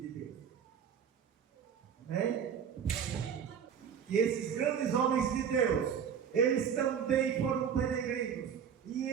Deus. Amém? Que esses grandes homens de Deus, eles também foram peregrinos, e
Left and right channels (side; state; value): left; quieter; 7.7 dB